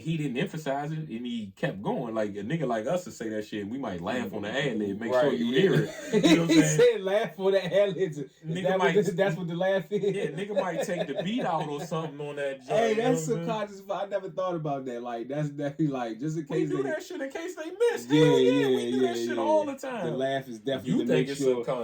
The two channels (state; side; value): identical; both; correlation 1.00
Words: he didn't emphasize it, and he kept going. Like, a nigga like us to say that shit, and we might laugh on the ad-lib, make sure you hear it. You know what I'm saying? He said laugh for the ad-libs. That's what the laugh is? Yeah, nigga might take the beat out or something on that joint. Hey, that's subconscious. I never thought about that. Like, that's definitely like, just in case we do that shit in case they miss. Yeah, we do that shit all the time. The laugh is definitely you think it's